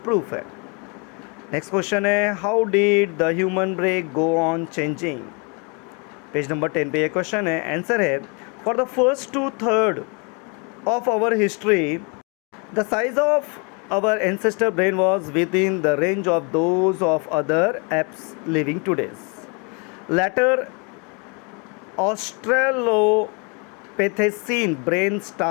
प्रूफ है। नेक्स्ट क्वेश्चन है, how did the human brain go on changing. Page number 10 पे ये क्वेश्चन है। आंसर है, for the first 2/3 of our history the size of our ancestor brain was within the range of those of other apes living today's. Later Australopithecine brain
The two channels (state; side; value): quieter; right; 33.6 dB